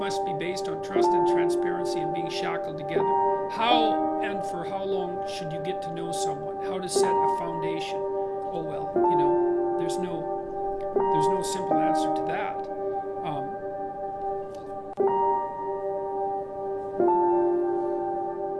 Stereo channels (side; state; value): both; identical; correlation 1.00